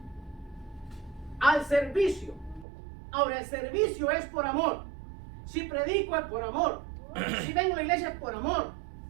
Al servicio. Ahora, el servicio es por amor. Si predico es por amor. Si vengo a la iglesia es por amor.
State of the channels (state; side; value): drops out; left; at 2.7 s